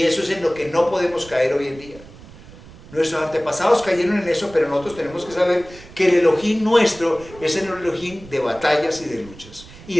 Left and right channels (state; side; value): noise; right; rumble, 19 dB below the sound